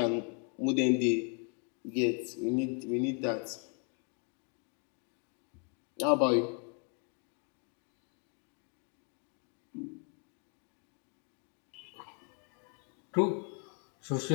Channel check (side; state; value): right; quieter; 38.1 dB